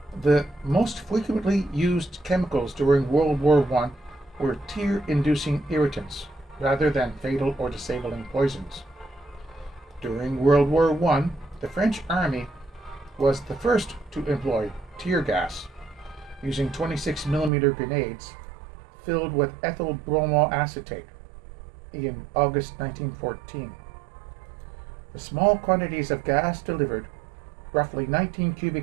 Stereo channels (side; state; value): left; drops out; at 17.5 s